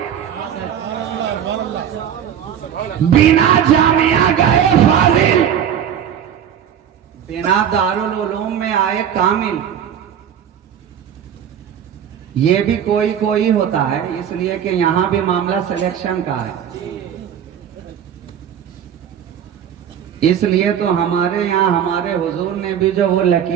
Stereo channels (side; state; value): left; quieter; 9.1 dB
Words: बिना जामिया गए फाजिल, बिना दारुल उलूम में आए कामिल। ये भी कोई कोई होता है, इसलिए कि यहां भी मामला सिलेक्शन का है। इसलिए तो हमारे यहाँ हमारे हुजूर ने भी जो वो